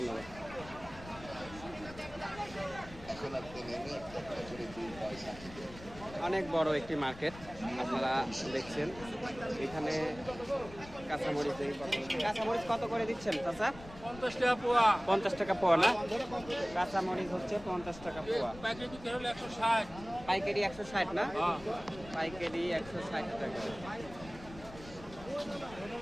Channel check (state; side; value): noise; left; rumble, 16 dB below the sound